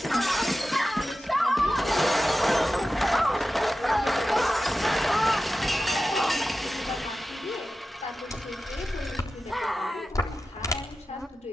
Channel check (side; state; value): both; normal; correlation 0.93